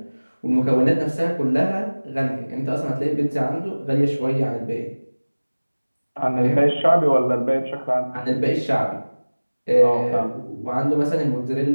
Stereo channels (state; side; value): inverted; both; correlation -1.00